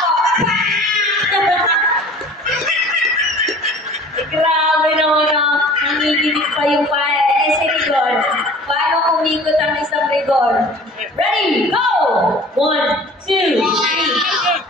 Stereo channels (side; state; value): both; normal; correlation 0.45